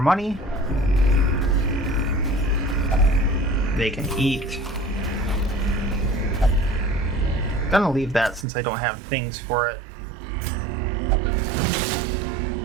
They can eat. Gonna leave that since I don't have things for it.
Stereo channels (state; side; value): drops out; left; at 8.5 s